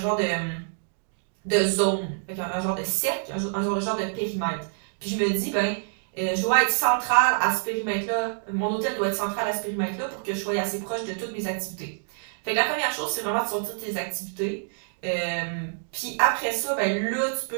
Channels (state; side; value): silent; left; digital silence